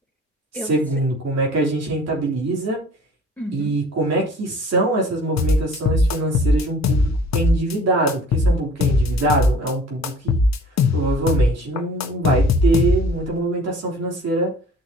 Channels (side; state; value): both; normal; correlation 0.48